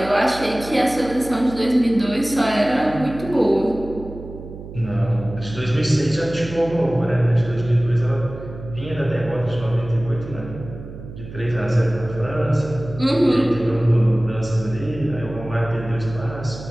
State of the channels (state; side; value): noise; right; hum, 13 dB below the sound